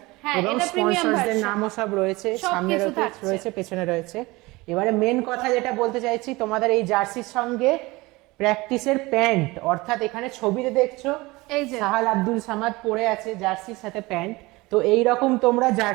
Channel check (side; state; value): left; quieter; 22.0 dB